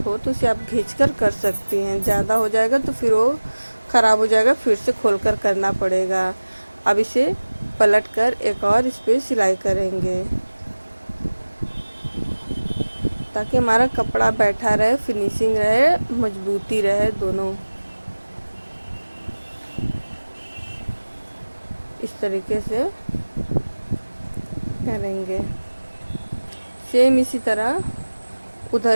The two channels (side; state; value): both; inverted; correlation -1.00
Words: हो तो उसे आप खींचकर कर सकती हैं, ज़्यादा हो जाएगा तो फिर वो ख़राब हो जाएगा, फिर से खोलकर करना पड़ेगा। अब इसे पलटकर एक और इस पर सिलाई करेंगे ताकि हमारा कपड़ा बैठा रहे, फिनिशिंग रहे, मजबूती रहे दोनों। इस तरीके से करेंगे। सेम इसी तरह